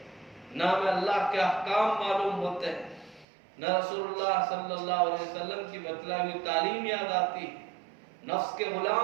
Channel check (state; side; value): drops out; left; at 3.2 s